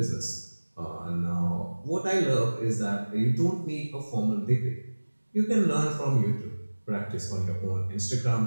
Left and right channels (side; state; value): both; inverted; correlation -1.00